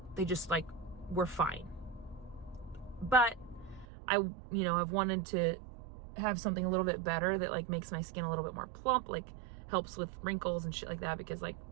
they just, like, were fine. But I've wanted to have something a little bit better that, like, makes my skin a little bit more plump, like helps with wrinkles and shit like that, because, like,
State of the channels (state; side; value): drops out; left; at 3.9 s